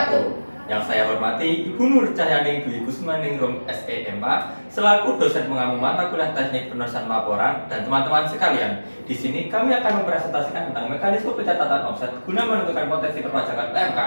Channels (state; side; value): inverted; both; correlation -1.00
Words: Yang saya hormati Ibu Nur Cahyaning Dwi Kusmaningrum SEMA selaku dosen pengampu mata kuliah teknik penulisan laporan dan teman-teman sekalian. Di sini kami akan mempresentasikan tentang mekanisme pencatatan offset guna menentukan potensi perpajakan